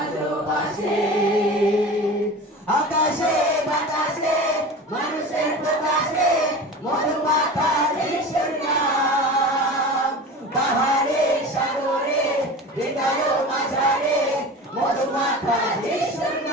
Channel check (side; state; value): both; normal; correlation 0.33